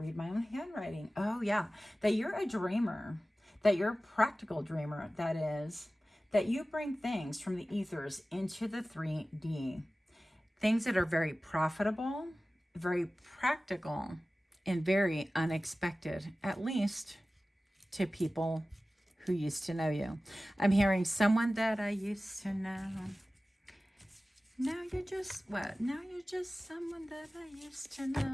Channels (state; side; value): normal; both; correlation 0.96